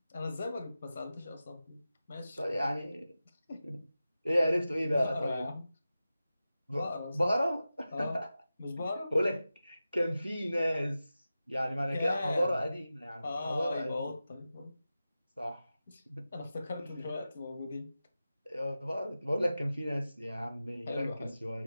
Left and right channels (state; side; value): inverted; both; correlation -0.93